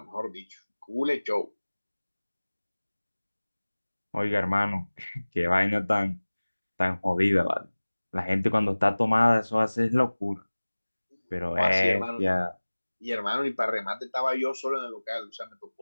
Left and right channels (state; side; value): inverted; both; correlation -1.00